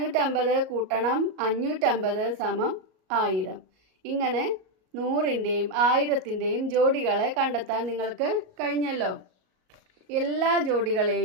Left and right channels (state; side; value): late; left; 38 ms